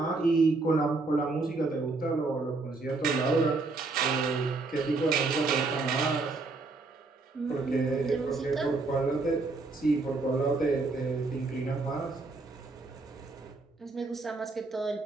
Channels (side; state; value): left; quieter; 3.6 dB